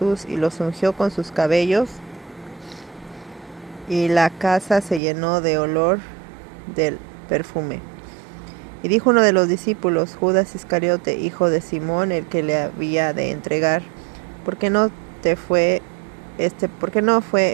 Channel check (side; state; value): left; drops out; at 5.0 s